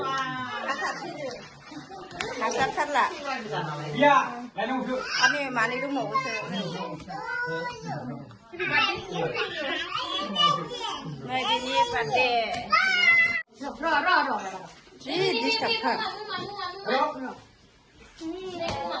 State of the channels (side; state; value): both; identical; correlation 1.00